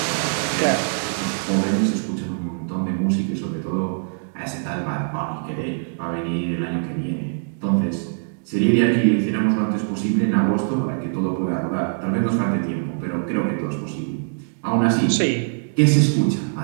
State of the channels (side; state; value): left; silent; digital silence